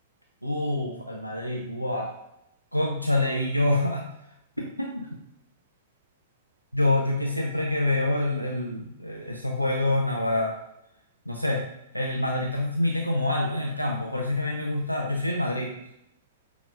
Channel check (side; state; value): both; inverted; correlation -0.79